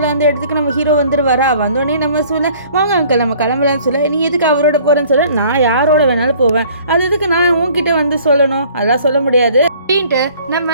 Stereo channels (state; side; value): inverted; both; correlation -0.54